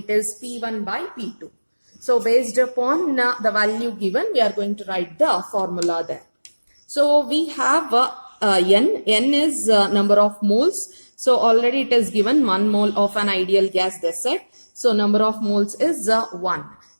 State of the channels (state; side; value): inverted; both; correlation -1.00